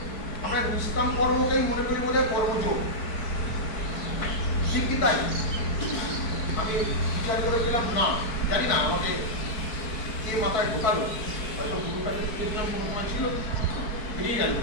আমরা নিষ্কাম কর্মকেই মনে করি বোধ হয় কর্মযোগ, ঠিক কি তাই? আমি বিচার করেছিলাম না, জানি না আমাকে কে মাথায় ঢোকালো, হয়তো গুরুর কাছে শিখেছিলাম কোনো সময় ছিল, বেরিয়ে গেল।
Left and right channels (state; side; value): late; right; 4.6 ms